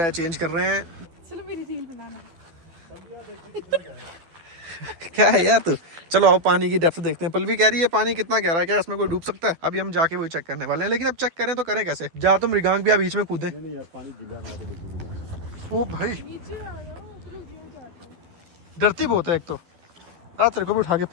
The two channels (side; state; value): left; late; 12 ms